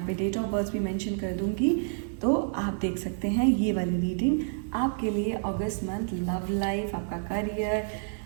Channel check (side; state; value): left; silent; 59 dB below the other